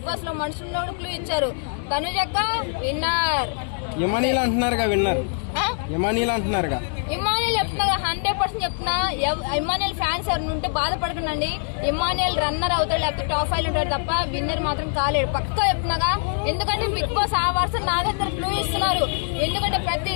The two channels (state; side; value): silent; right; 61 dB below the other